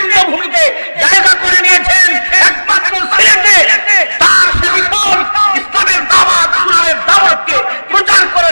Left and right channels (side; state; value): both; inverted; correlation -1.00